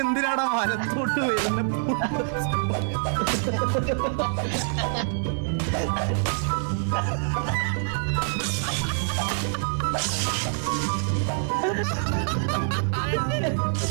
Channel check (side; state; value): left; silent; 57 dB below the other